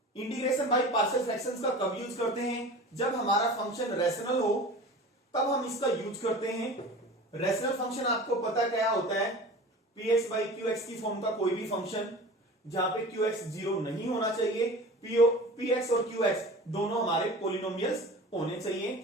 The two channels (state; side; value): normal; both; correlation 0.37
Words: Integration by partial fractions का कब यूज करते हैं? जब हमारा फंक्शन रैशनल हो तब हम इसका यूज करते हैं। रैशनल फंक्शन आपको पता क्या होता है? px बाई qx की फॉर्म का कोई भी फंक्शन जहां पे qx जीरो नहीं होना चाहिए, px और qx दोनों हमारे पोलिनोमियल्स होने